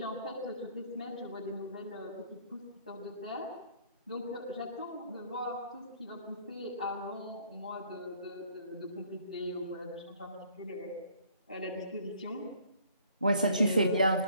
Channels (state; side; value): inverted; both; correlation -0.60